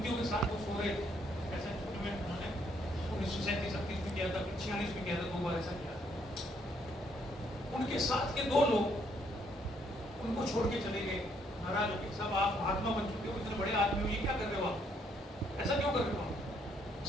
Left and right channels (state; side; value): normal; both; correlation 0.70